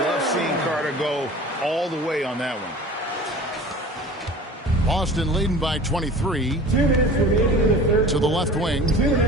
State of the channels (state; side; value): normal; both; correlation 0.41